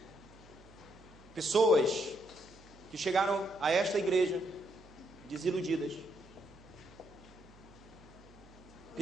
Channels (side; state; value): right; noise; hum, 23 dB below the sound